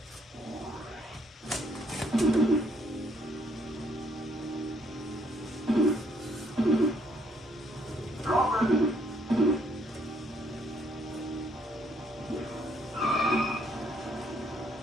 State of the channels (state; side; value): normal; both; correlation 0.69